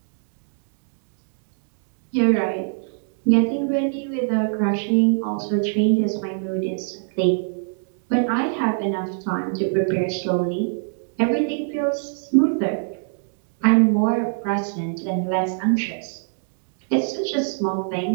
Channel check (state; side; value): silent; left; digital silence